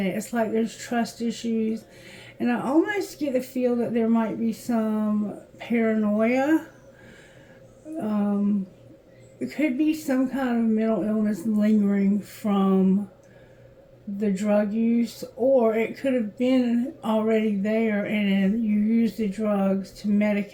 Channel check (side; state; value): both; identical; correlation 1.00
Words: it. It's like there's trust issues. And I almost get the feel that there might be some paranoia. It could be some kind of mental illness lingering from the drug use, or it could have been already there and you use the drugs to